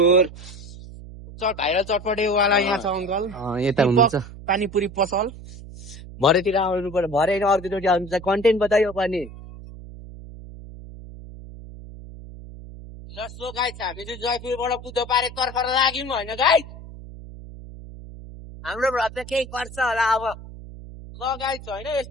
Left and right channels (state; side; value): noise; right; hum, 15 dB below the sound